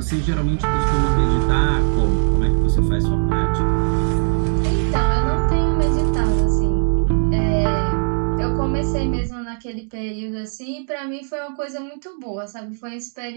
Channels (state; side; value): silent; left; 63 dB below the other